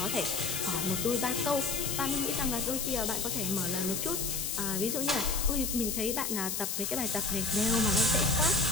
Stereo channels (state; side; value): noise; left; hiss, 2 dB below the sound